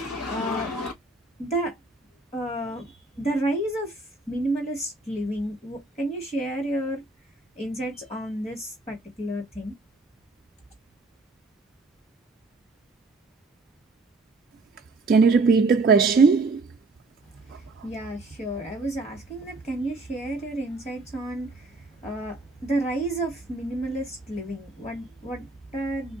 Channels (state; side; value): quieter; left; 3.2 dB